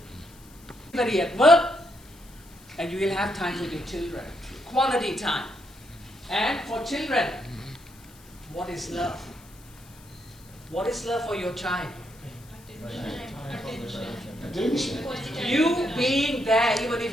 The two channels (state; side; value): noise; left; hiss, 24 dB below the sound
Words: Everybody at work, and you will have time with your children. Quality time. And for children, what is love? What is love for your child? You being there, even